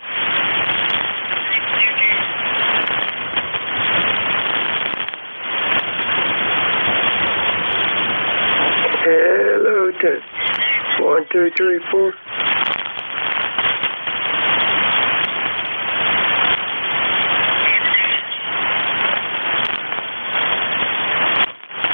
Hello, test. 1, 2, 3, 4.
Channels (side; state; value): both; inverted; correlation -1.00